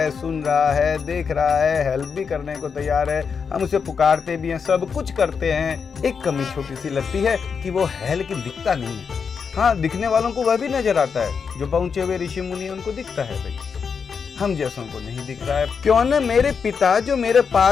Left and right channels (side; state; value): right; quieter; 6.0 dB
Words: सुन रहा है, देख रहा है, हेल्प भी करने को तैयार है। हम उसे पुकारते भी हैं, सब कुछ करते हैं। एक कमी छोटी सी लगती है कि वो है लेकिन दिखता नहीं है। हाँ, दिखने वालों को वह भी नजर आता है, जो पहुंचे हुए ऋषि मुनि उनको दिखता है भाई, हम जैसों को नहीं दिख रहा है। क्यों न मेरे पिता जो मेरे